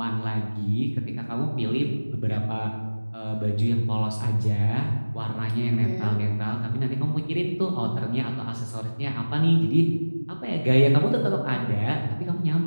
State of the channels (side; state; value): both; inverted; correlation -1.00